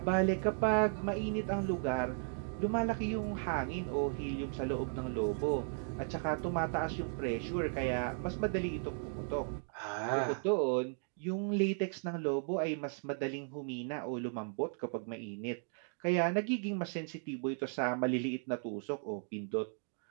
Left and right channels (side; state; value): left; silent; 54 dB below the other